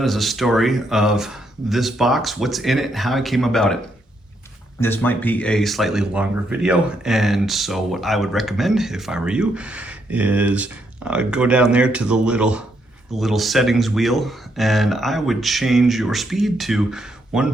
is a story of this box, what's in it, how I came about it. This might be a slightly longer video, and so what I would recommend if I were you is go down there to the little settings wheel, and I would change your speed to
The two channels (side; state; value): both; normal; correlation 0.76